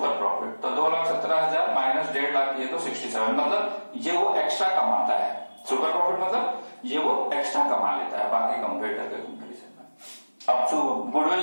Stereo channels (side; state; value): both; inverted; correlation -1.00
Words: प्रॉफिट, तो 2,17,000 माइनस 1.5 लाख, ये तो 67, मतलब ये वो एक्स्ट्रा कमाता है। सुपर प्रॉफिट मतलब ये वो एक्स्ट्रा कमा लेता है बाकी कंपेटर के कंपेरिजन में। अब गुडविल